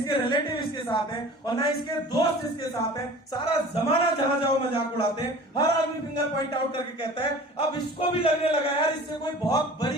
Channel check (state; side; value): normal; both; correlation 0.42